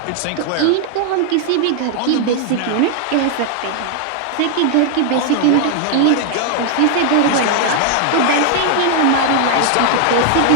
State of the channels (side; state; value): both; different; correlation 0.00